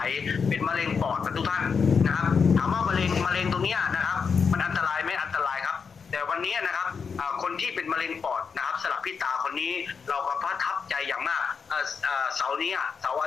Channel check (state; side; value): quieter; right; 5.8 dB